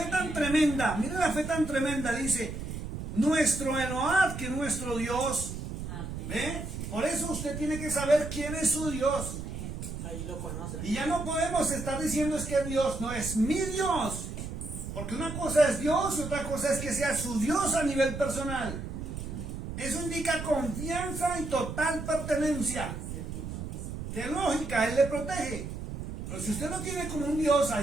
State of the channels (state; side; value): noise; right; rumble, 7 dB below the sound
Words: tan tremenda, dice, nuestro Elohá, que nuestro Dios. ¿Ve? Por eso usted tiene que saber quién es su Dios. Ahí lo conoce. Y ya no podemos estar diciendo es que Dios no es mi Dios. Porque una cosa es Dios y otra cosa es que sea su Dios a nivel personal. Eso indica confianza y total pertenencia. De lógica, Él le protege. Pero si usted no tiene como un Dios